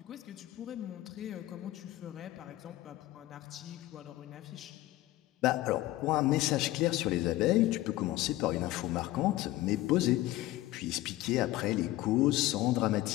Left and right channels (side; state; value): right; quieter; 16.5 dB